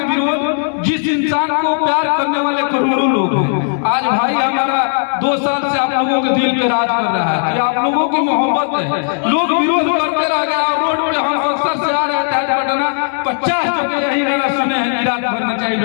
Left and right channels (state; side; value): silent; right; digital silence